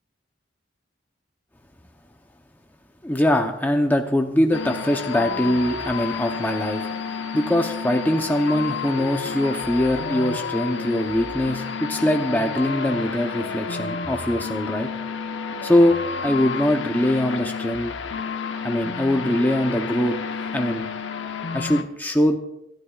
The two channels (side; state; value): both; normal; correlation 0.77